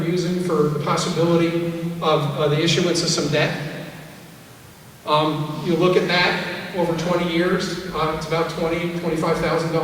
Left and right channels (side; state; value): both; identical; correlation 1.00